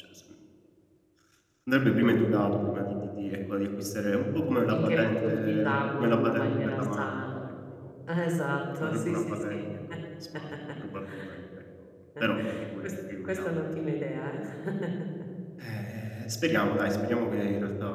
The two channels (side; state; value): both; identical; correlation 1.00